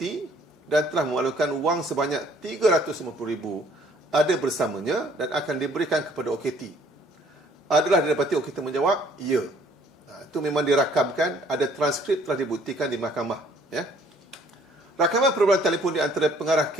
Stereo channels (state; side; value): normal; both; correlation 0.60